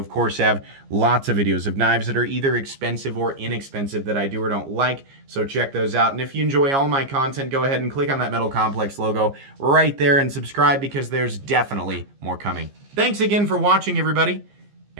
course have lots of videos of knives that are either expensive or inexpensive that I do or don't like, so check those out. And if you enjoy all my content, go ahead and click on that Metal Complex logo right there and subscribe because there's definitely more coming. Thanks again for watching, everybody,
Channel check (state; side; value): late; left; 15 ms